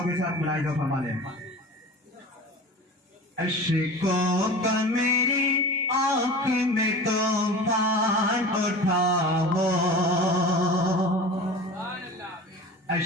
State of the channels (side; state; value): both; normal; correlation 0.36